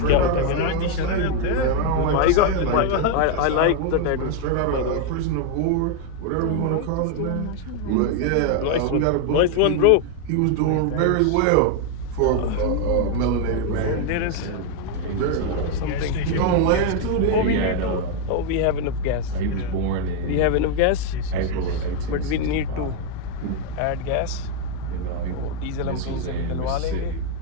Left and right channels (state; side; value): different; both; correlation 0.01